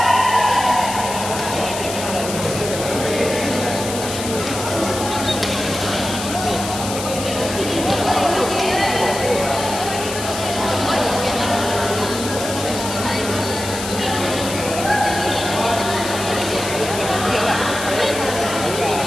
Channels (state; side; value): noise; left; hiss, 7 dB below the sound